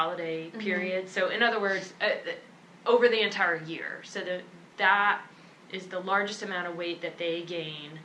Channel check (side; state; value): both; identical; correlation 1.00